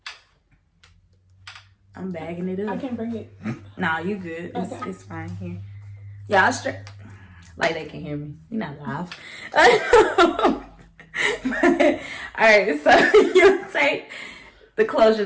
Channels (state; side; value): identical; both; correlation 1.00